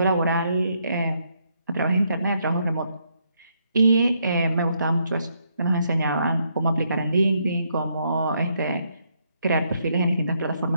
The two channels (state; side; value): inverted; both; correlation -0.75